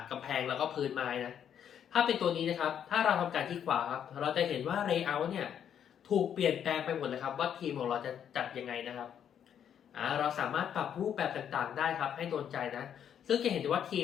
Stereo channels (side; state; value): right; quieter; 9.0 dB